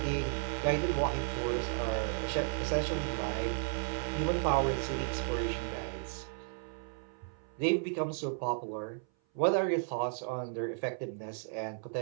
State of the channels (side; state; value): left; silent; 55 dB below the other